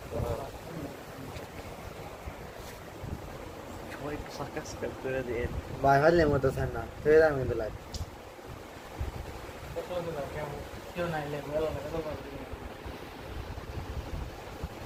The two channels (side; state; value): both; identical; correlation 1.00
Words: সবাই একটু সাবস্ক্রাইব করে দেন। ভাই হারলে মতো চান না তুই আমি কিন্তু লাইভ কেউ নাই লেগে গেল না,